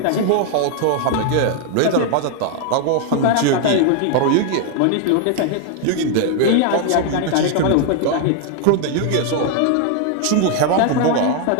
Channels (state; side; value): different; both; correlation 0.00